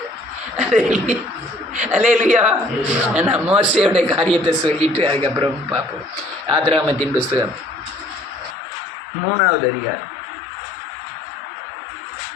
அல்லேலூயா. நான் மோசேயோட காரியத்தை சொல்லிட்டு அதுக்கப்புறம் பார்ப்போம். ஆதிராகமத்தின் புஸ்தகம் 3வது அதிகாரம்.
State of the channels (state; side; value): drops out; right; at 8.6 s